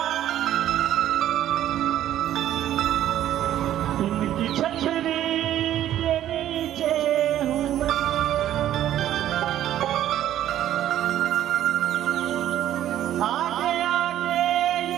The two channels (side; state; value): left; quieter; 12.0 dB